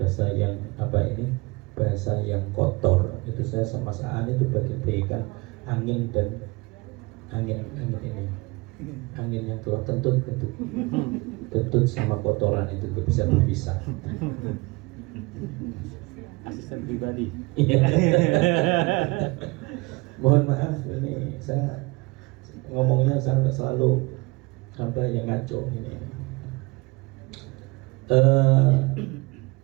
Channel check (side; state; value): left; quieter; 24.7 dB